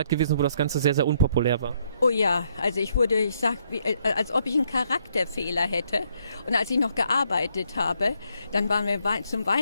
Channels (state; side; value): inverted; both; correlation -0.72